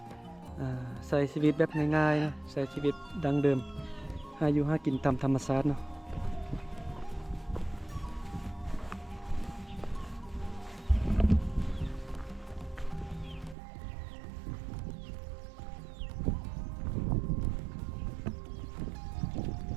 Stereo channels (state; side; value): drops out; left; at 13.6 s